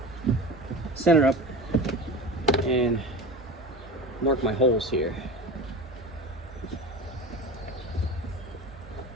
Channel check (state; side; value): normal; both; correlation 0.30